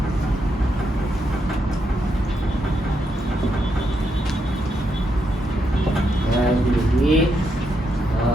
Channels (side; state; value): both; normal; correlation 0.80